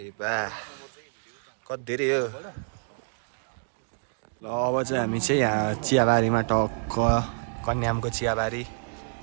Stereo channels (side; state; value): left; silent; 60 dB below the other